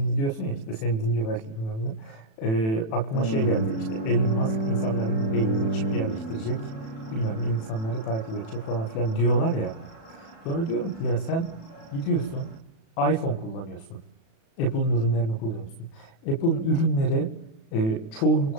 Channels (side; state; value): right; late; 36 ms